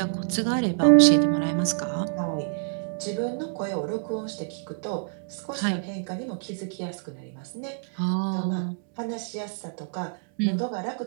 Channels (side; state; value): left; silent; 60 dB below the other